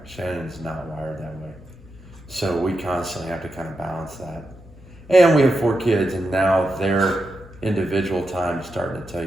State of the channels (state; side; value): normal; both; correlation 0.87